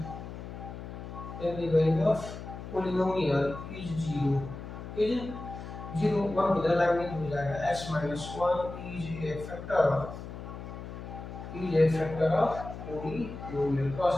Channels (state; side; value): noise; left; hum, 10 dB below the sound